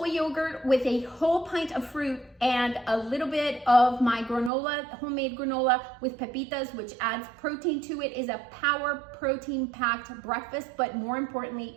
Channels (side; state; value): left; drops out; at 4.5 s